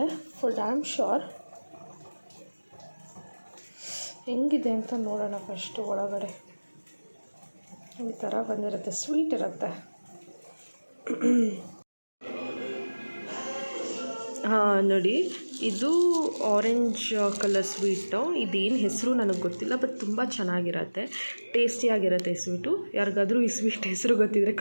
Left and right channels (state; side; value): inverted; both; correlation -1.00